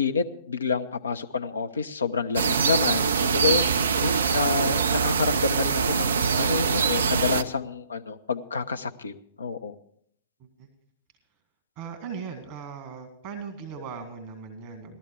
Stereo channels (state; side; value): inverted; both; correlation -0.63